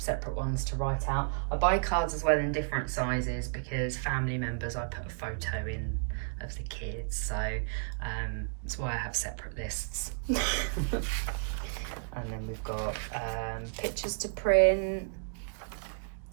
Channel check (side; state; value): left; silent; digital silence